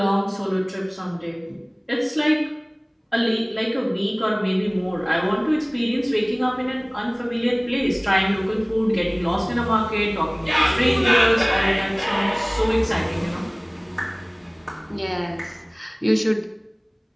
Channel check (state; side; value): identical; both; correlation 1.00